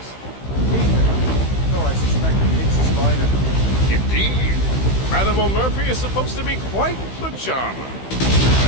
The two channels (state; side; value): late; right; 15 ms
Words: Though I suspect the king's a spider. Indeed. Madame O'Murphy is supposed to be quite the charmer.